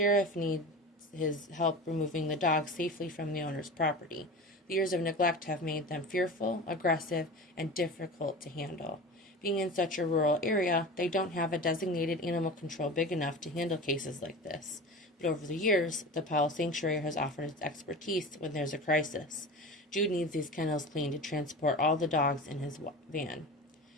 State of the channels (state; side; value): normal; both; correlation 0.32